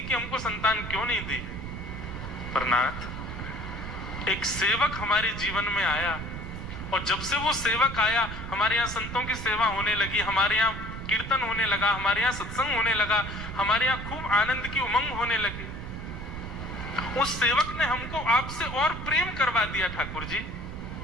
कि हमको संतान क्यों नहीं दी। पर नाथ, एक सेवक हमारे जीवन में आया, और जब से वो सेवक आया, हमारे यहाँ संतों की सेवा होने लगी, हमारे यहाँ कीर्तन होने लगा, हमारे यहाँ सत्संग होने लगा, हमारे यहाँ खूब आनंद की उमंग होने लगी। उस सेवक ने हमको आपसे और प्रेम करवा दिया। ठाकुर जी,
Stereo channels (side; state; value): right; noise; rumble, 8 dB below the sound